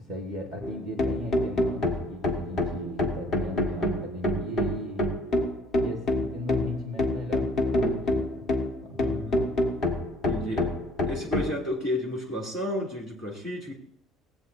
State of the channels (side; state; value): both; normal; correlation 0.57